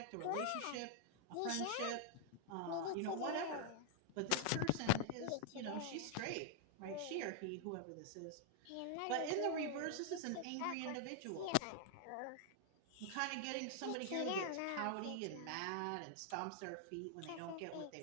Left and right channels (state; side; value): different; both; correlation -0.01